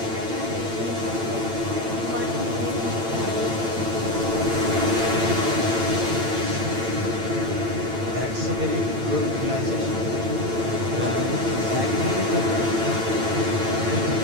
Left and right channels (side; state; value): left; late; 8.9 ms